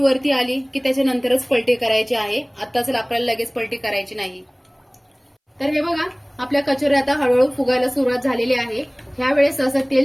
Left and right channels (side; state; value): both; identical; correlation 1.00